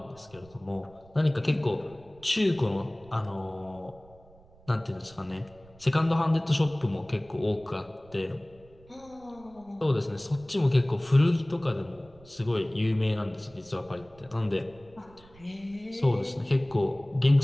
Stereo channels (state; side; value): noise; right; rumble, 25 dB below the sound